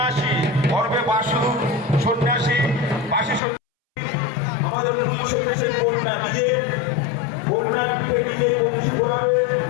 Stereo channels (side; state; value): right; drops out; at 3.4 s